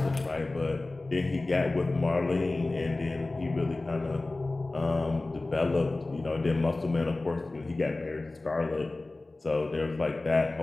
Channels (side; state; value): right; quieter; 3.1 dB